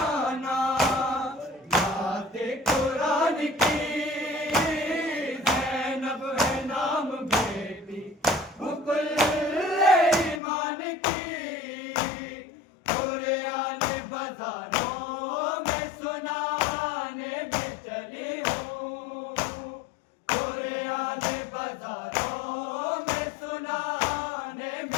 नाते कुरान की, ज़ैनब है नाम बेटी मुकुल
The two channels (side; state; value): right; drops out; at 10.4 s